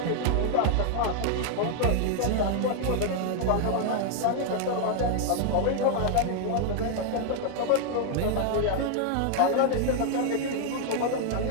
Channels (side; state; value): both; different; correlation 0.00